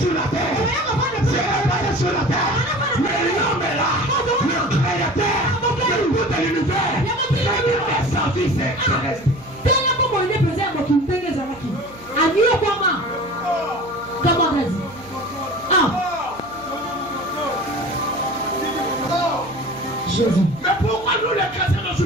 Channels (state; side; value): noise; right; hum, 23 dB below the sound